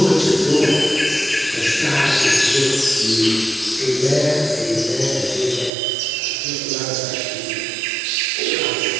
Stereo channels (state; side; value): drops out; left; at 5.7 s